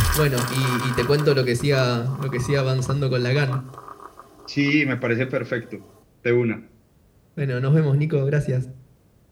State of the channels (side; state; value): both; identical; correlation 1.00